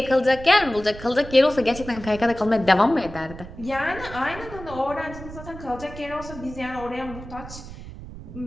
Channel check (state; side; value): noise; right; rumble, 13 dB below the sound